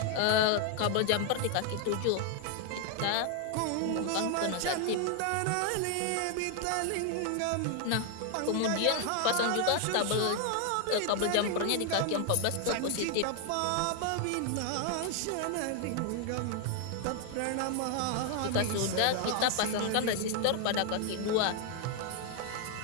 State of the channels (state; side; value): different; both; correlation 0.00